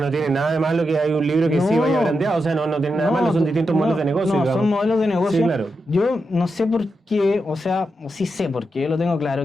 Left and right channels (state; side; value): normal; both; correlation 0.86